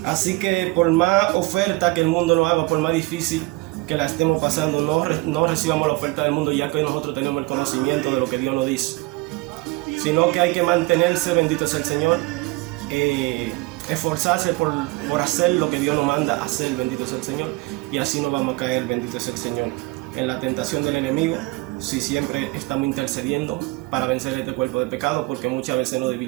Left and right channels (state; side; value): quieter; left; 24.0 dB